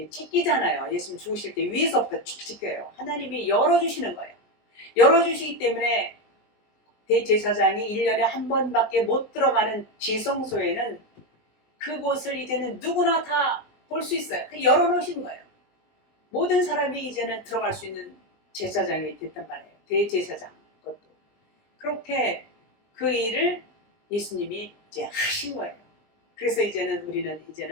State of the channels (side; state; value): right; late; 20 ms